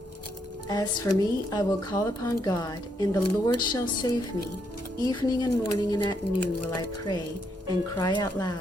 As for me, I will call upon God, and the Lord shall save me. Evening and morning and at noon will I pray and cry out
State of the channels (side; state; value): both; normal; correlation 0.76